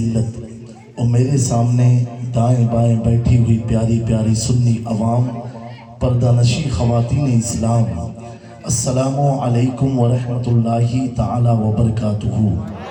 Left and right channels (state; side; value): identical; both; correlation 1.00